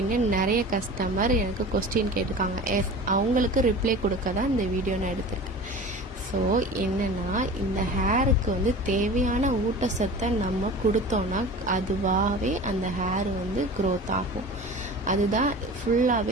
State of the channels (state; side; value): normal; both; correlation 0.37